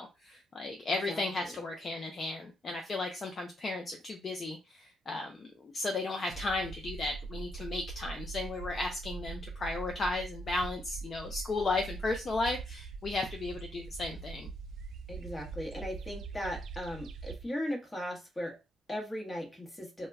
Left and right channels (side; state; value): both; normal; correlation 0.78